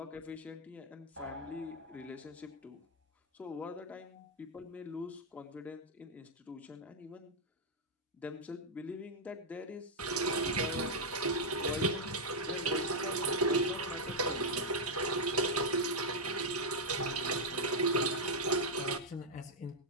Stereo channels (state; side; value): normal; both; correlation -0.03